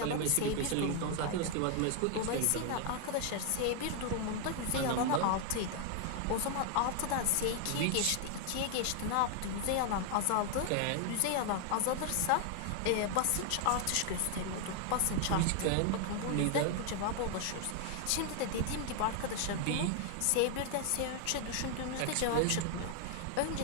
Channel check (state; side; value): different; both; correlation 0.00